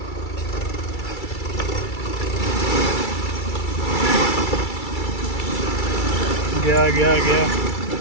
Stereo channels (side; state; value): right; late; 2.3 ms